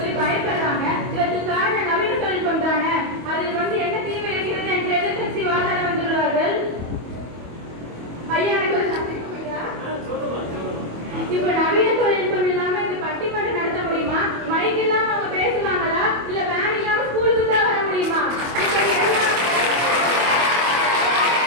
பயப்படுறாங்க. இதற்கு காரணம் நவீன தொழில்நுட்பம் தானே. அதில் வந்து என்ன தீமை இருக்கிறது என்று எதிர்கட்சி வாதாட வந்துள்ளார்கள். ஐயா எனக்கு ஒரு சந்தேகம் ஐயா. இப்ப நவீன தொழில்நுட்பம் இல்லாம இந்த பட்டிமன்றம் நடத்த முடியுமா? மைக் இல்லாம அவங்க பேசுவாங்களா? இல்ல வேன் இல்லாம ஸ்கூலுக்கு தான் வர முடியுமா?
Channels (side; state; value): left; late; 25 ms